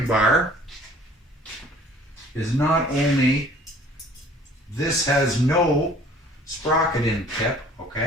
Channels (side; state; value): both; normal; correlation 0.52